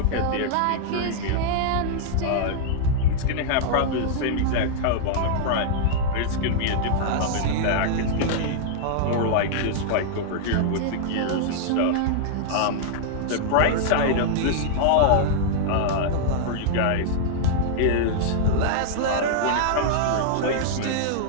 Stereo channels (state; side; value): different; both; correlation -0.01